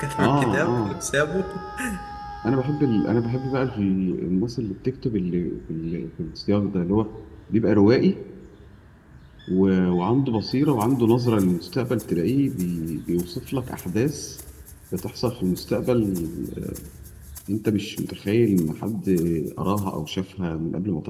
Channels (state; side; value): identical; both; correlation 1.00